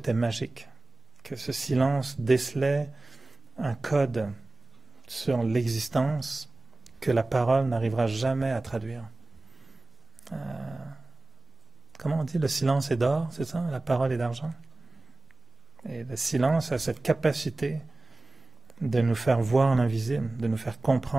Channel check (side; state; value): left; quieter; 3.1 dB